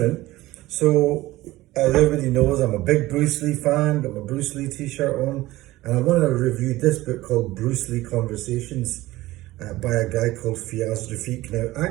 So as everybody knows, I'm a big Bruce Lee fan. Got my Bruce Lee T-shirt on, and I want to review this book called Bruce Lee Conversations by a guy called Fiaz Rafiq. Now,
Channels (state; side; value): quieter; left; 17.7 dB